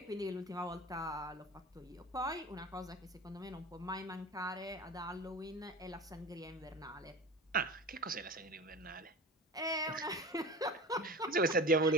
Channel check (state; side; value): normal; both; correlation 0.33